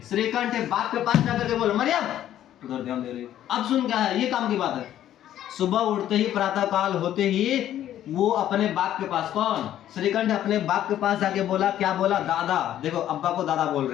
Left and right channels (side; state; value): right; quieter; 11.8 dB